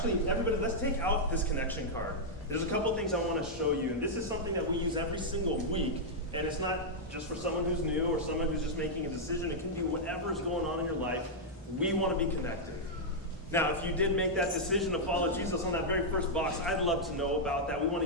everybody, let's take out this connection card. There's a couple things I want to show you. And this is something that we use every single week. And it's not just for someone who's new or someone who's just making a decision. It can be whatever's going on in your life. We want to be connected. Now, if you did make that decision to follow Jesus on that very first box, I'd love to know about that. We want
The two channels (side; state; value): both; normal; correlation -0.06